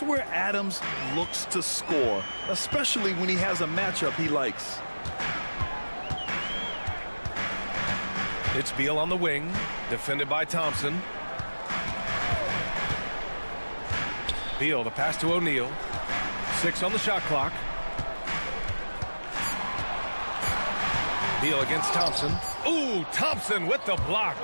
where Adams looks to score, especially when he has a matchup he likes. It's Beal on the wing, defended by Thompson. Beal, the pass to O'Neal. 6 on the shot clock. Beal against Thompson. Ooh, Thompson with the block.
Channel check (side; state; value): both; inverted; correlation -1.00